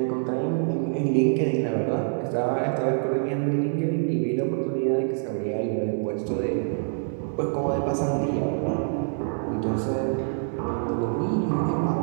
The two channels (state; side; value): silent; left; digital silence